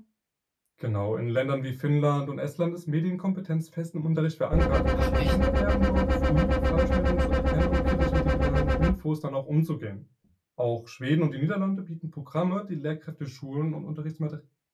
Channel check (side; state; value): both; identical; correlation 1.00